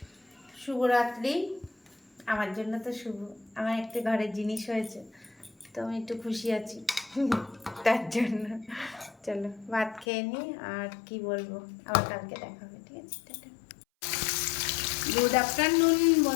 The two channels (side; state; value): right; drops out; at 10.1 s